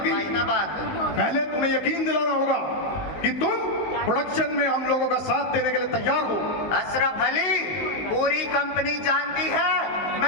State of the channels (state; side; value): late; right; 19 ms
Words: भाई ना बात। पहले तुम्हें यकीन दिलाना होगा कि तुम प्रोडक्शन में हम लोगों का साथ देने के लिए तैयार हो। अशरफ अली, पूरी कंपनी जानती है